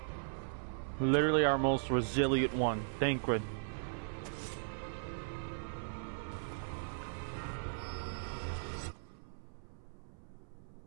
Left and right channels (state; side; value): silent; left; 52 dB below the other